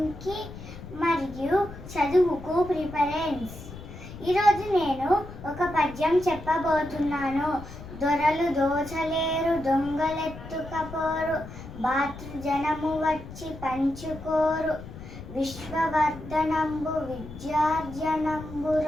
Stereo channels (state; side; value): noise; left; rumble, 13 dB below the sound